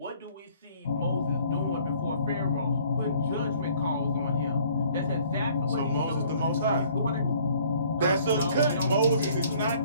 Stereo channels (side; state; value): both; inverted; correlation -0.57